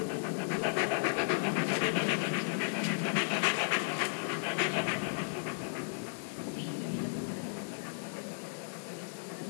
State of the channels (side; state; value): right; silent; digital silence